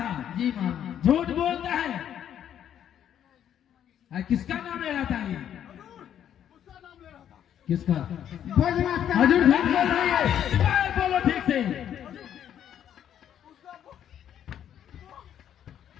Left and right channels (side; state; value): right; quieter; 9.9 dB